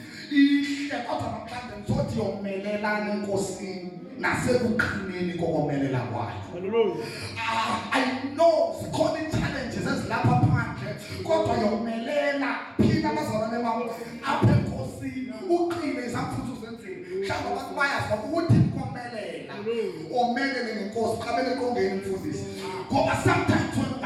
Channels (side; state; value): both; identical; correlation 1.00